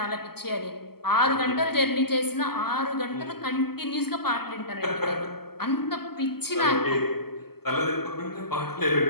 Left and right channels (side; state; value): right; late; 0.96 ms